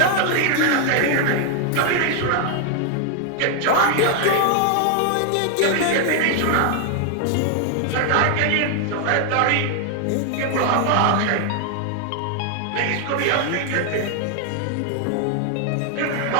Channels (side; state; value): both; different; correlation 0.00